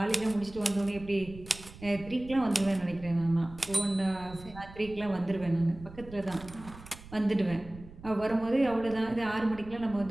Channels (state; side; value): noise; right; rumble, 17 dB below the sound